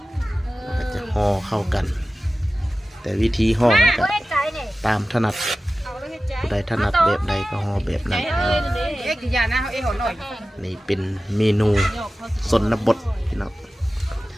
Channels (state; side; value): normal; both; correlation 0.95